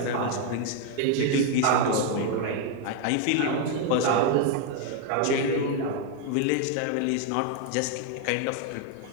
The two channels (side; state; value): both; different; correlation 0.01